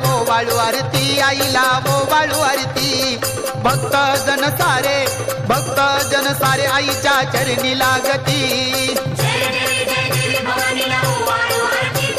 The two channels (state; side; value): identical; both; correlation 1.00